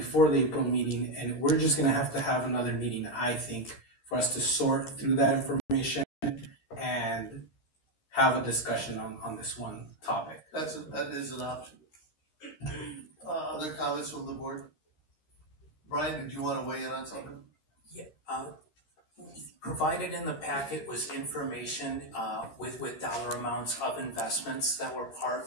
the April meeting, and we're just going to have another meeting, I think, for us to sort through that information and have a discussion on this one topic. That is an option. Other comments from the board? Brian, did you want to weigh in on something? Yeah. Provided in the packet was information with dollar amounts of investments that were part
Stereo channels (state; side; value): late; right; 13 ms